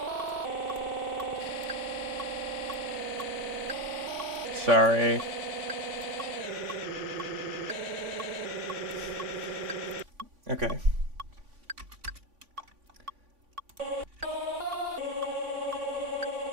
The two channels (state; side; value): late; left; 3.5 ms